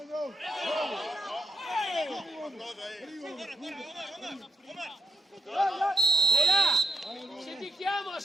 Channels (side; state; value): both; normal; correlation 0.78